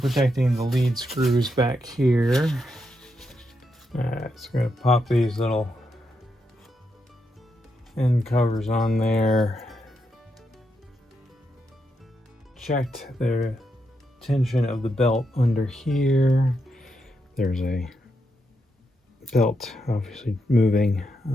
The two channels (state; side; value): normal; both; correlation 0.83